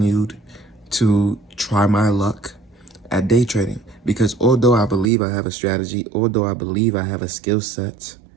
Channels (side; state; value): left; drops out; at 5.1 s